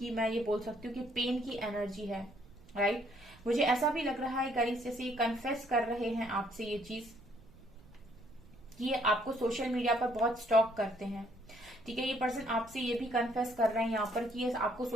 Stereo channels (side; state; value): right; noise; rumble, 24 dB below the sound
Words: मैं ये बोल सकती हूँ कि पेन की एनर्जी है। राइट, मुझे ऐसा भी लग रहा है गाइस जैसे ये कन्फेस कर रहे हैं आपसे ये चीज कि ये आपको सोशल मीडिया पर बहुत स्टॉक करते हैं। ठीक है, ये पर्सन आपसे ये भी कन्फेस कर रहे हैं यहाँ पर कि ये आपको